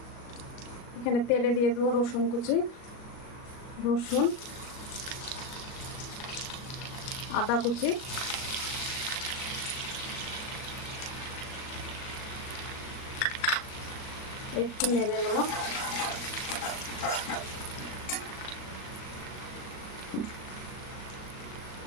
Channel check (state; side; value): late; right; 38 ms